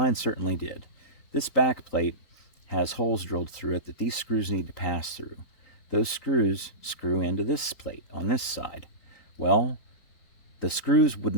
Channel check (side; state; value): right; late; 3.9 ms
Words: certainly did. This back plate has holes drilled through it that these screws need to pass through. Those screws screw into this plate on this side. Well, the screws would